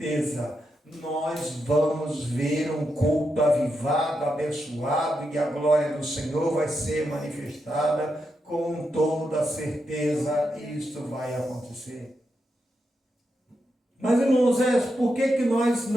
nós vamos ver um culto avivado, abençoado, e a glória do Senhor vai ser manifestada com toda certeza. Isso vai acontecer. Mas, irmãos, por que nós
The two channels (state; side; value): normal; both; correlation 0.85